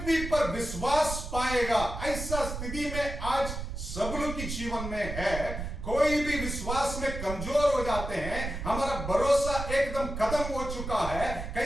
पर विश्वास पाएगा? ऐसा स्थिति में आज सब लोग की जीवन में है। कोई भी विश्वास में कमजोर हो जाते हैं, हमारा भरोसा एकदम खत्म हो चुका है,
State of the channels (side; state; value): right; noise; rumble, 6 dB below the sound